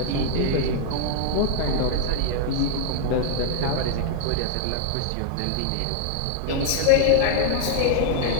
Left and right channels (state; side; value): different; both; correlation 0.00